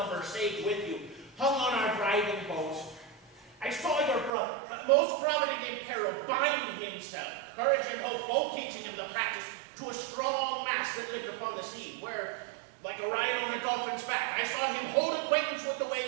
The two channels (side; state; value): left; drops out; at 4.3 s